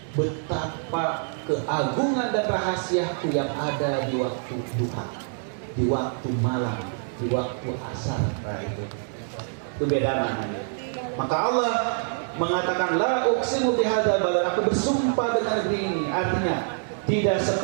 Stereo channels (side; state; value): left; silent; digital silence